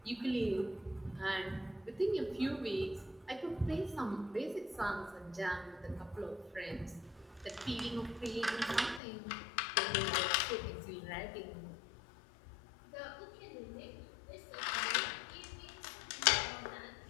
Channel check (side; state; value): right; drops out; at 9.0 s